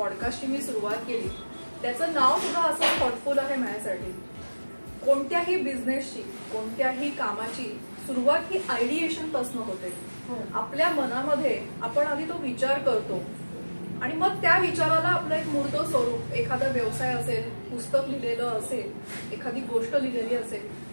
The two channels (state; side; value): inverted; both; correlation -1.00